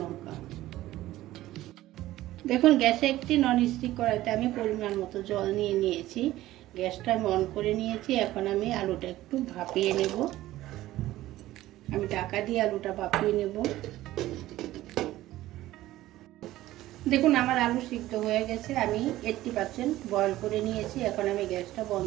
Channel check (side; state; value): left; quieter; 15.6 dB